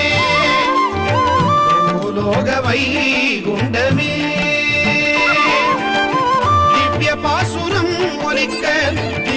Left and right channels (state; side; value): identical; both; correlation 1.00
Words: பூலோக வைகுண்டமே திவ்ய பாசுரம் ஒலிக்க